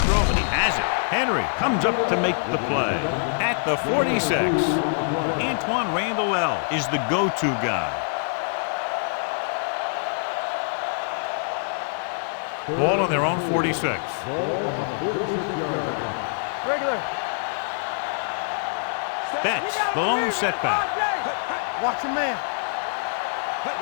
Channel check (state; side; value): silent; right; 62 dB below the other